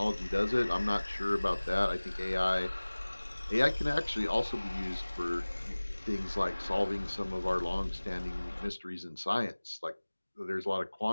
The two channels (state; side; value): inverted; both; correlation -1.00